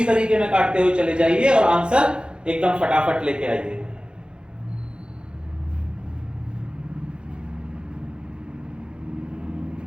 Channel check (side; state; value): left; late; 0.052 ms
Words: तरीके में काटते हुए चले जाइए और आंसर एकदम फटाफट लेके आइए।